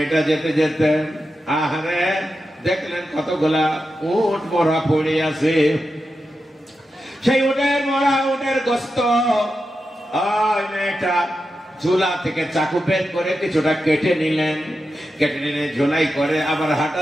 যেতে যেতে আহারে দেখলেন কতগুলা উট মরা পড়ে আছে। সেই উটের মরা, উটের গোস্ত ওই মেয়েটা ঝোলা থেকে চাকু বের করে কিছুটা কেটে নিলেন। কেটে নিলে ঝোলাই করে আবার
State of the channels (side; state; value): both; normal; correlation 0.89